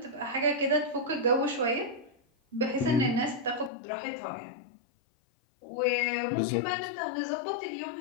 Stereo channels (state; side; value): drops out; right; at 3.7 s